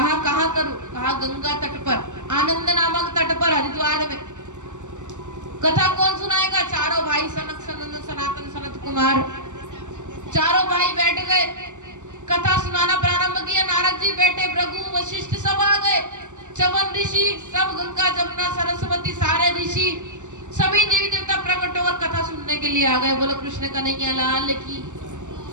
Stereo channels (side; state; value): left; late; 0.85 ms